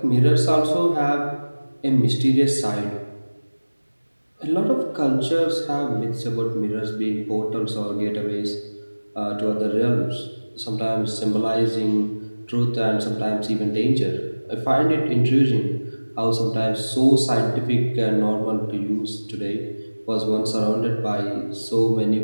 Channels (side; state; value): both; inverted; correlation -1.00